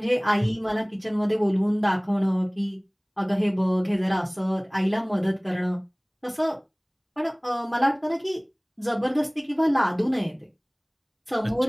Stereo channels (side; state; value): both; identical; correlation 1.00